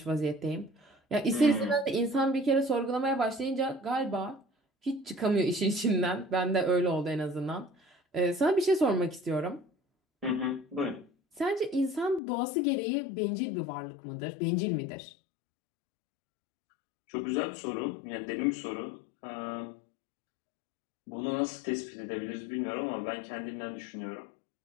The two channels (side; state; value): right; drops out; at 12.2 s